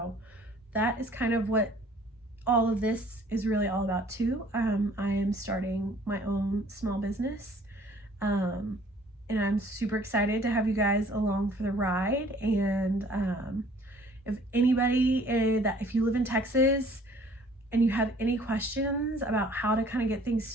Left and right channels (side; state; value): both; normal; correlation 0.55